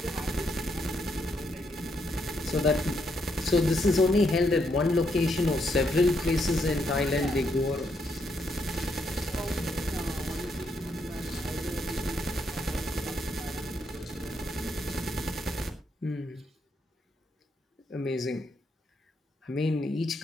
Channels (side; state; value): both; normal; correlation 0.77